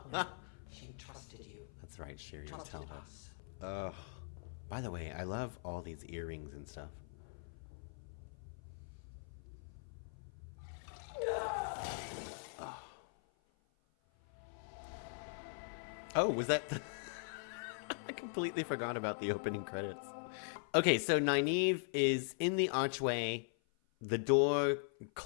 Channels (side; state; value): right; silent; 50 dB below the other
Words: she trusted you. That's right, Shiri. Trusted us. By the way, I love all these earrings and stuff. Oh, was that the... I completely forgot about the opening credits. Okay, so Nynaeve is in the archway. The door